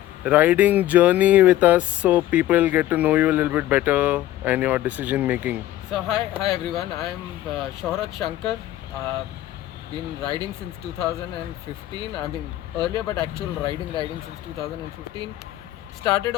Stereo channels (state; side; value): quieter; right; 14.2 dB